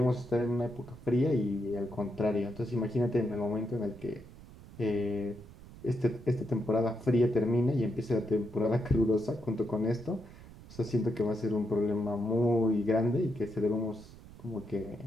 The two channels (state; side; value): noise; right; rumble, 19 dB below the sound